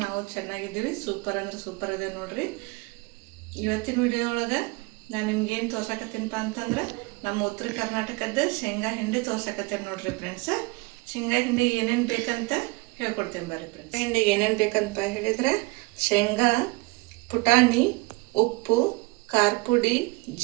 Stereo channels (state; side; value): quieter; left; 25.8 dB